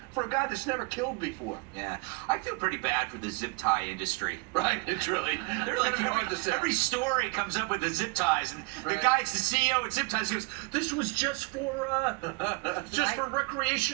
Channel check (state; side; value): quieter; left; 29.1 dB